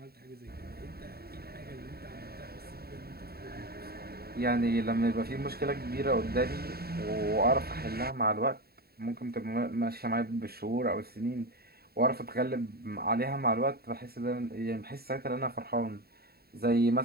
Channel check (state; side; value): late; left; 0.45 ms